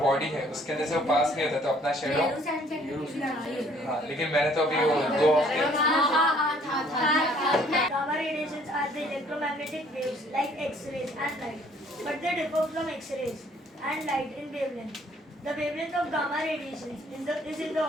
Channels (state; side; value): normal; both; correlation 0.60